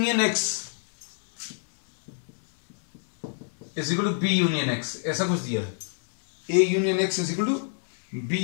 X is equal to B union X, ऐसा कुछ दिया है। A union X is equal to B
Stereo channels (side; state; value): right; silent; 57 dB below the other